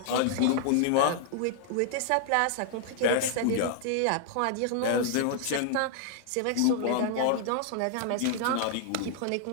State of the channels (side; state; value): both; different; correlation 0.00